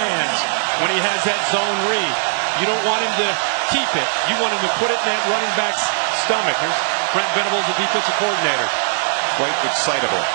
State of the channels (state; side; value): silent; left; 57 dB below the other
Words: when he has that zone read. You don't want him to keep it. You want him to put it in that running back's stomach. There's Brent Venables, the defensive coordinator. Quite excitable.